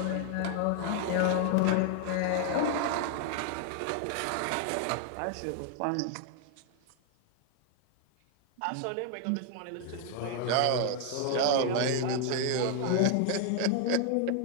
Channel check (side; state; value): both; different; correlation 0.00